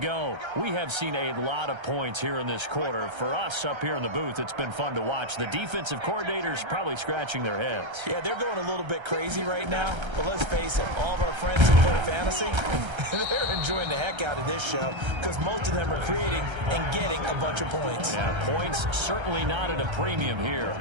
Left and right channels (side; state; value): left; late; 1.3 ms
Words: We have seen a lot of points here in this quarter. For us up here in the booth, it's been fun to watch. The defensive coordinators probably scratching their heads. Yeah, they're going a little bit crazy right now, but let's face it, all of our friends who play fantasy, they're enjoying the heck out of this show because most of them are creating and getting a bunch of points. Yeah, points certainly not at a premium here.